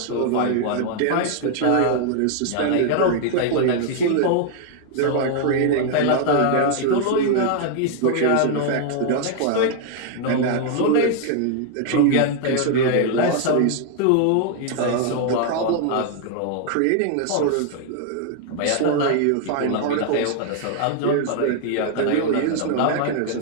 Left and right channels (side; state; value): both; different; correlation 0.00